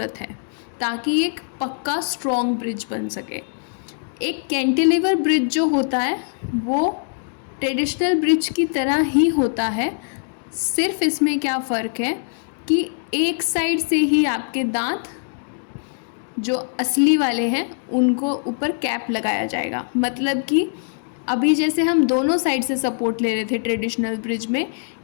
है, ताकि एक पक्का स्ट्रॉन्ग ब्रिज बन सके। एक कैंटिलीवर ब्रिज जो होता है वो ट्रेडिशनल ब्रिज की तरह ही होता है, सिर्फ इसमें क्या फ़र्क है कि एक साइड से ही आपके दांत जो असली वाले हैं उनको ऊपर कैप लगाया जाएगा। मतलब कि अभी जैसे हम दोनों साइड से सपोर्ट ले रहे थे ट्रेडिशनल ब्रिज में,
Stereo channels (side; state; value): right; silent; digital silence